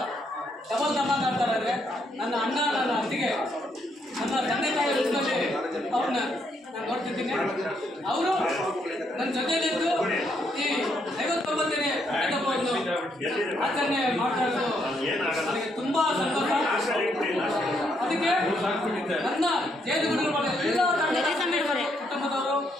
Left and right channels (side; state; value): both; normal; correlation 0.74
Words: ಡಬಲ್ ಧಮಾಲ್ ಮಾಡ್ತಾರೆ ಅಂದರೆ ನನ್ನ ಅಣ್ಣ, ನನ್ನ ಅತ್ತಿಗೆ, ನನ್ನ ತಂದೆ ತಾಯಿ ರೂಪದಲ್ಲಿ ಅವ್ರನ್ನ ನಾನು ನೋಡ್ತಿದ್ದೀನಿ. ಅವರು ನನ್ನ ಜೊತೆಯಲ್ಲಿದ್ದು ಈ 59ನೇ ಹಬ್ಬವನ್ನು ಆಚರಣೆ ಮಾಡ್ತಾ ಇರೋದು ನನಗೆ ತುಂಬ ಸಂತೋಷ. ಅದಕ್ಕೆ ನನ್ನ ಜೇನುಗೂಡಿನ ಎಲ್ಲ ಕುಟುಂಬದವರು,